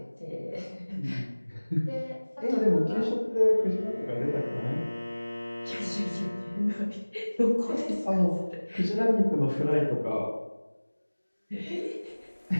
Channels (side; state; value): both; inverted; correlation -1.00